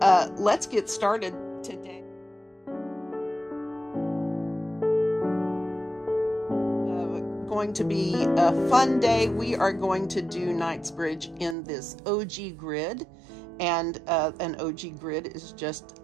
let's get started today. Going to be a fun day. We are going to do KNIGHTSBRIDGE in this OG grid, and an OG grid is just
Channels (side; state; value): left; drops out; at 11.6 s